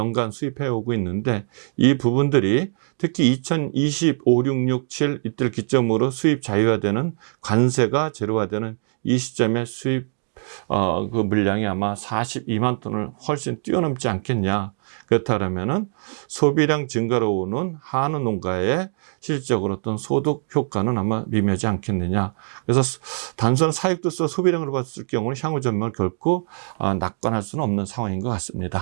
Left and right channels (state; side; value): silent; left; 64 dB below the other